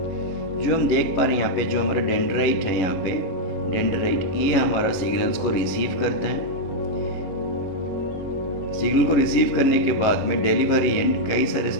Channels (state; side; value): late; right; 11 ms